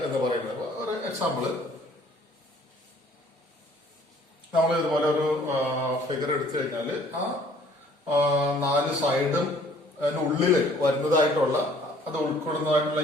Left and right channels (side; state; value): both; normal; correlation 0.57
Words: എന്ന് പറയുന്നത്. ഒരു എക്സാമ്പിള്, നമ്മൾ ഇതുപോലെ ഒരു ഫിഗർ എടുത്തു കഴിഞ്ഞാൽ ആ 4 സൈഡും അതിനുള്ളിൽ വരുന്നതായിട്ടുള്ള, അത് ഉൾക്കൊള്ളുന്നതായിട്ടുള്ള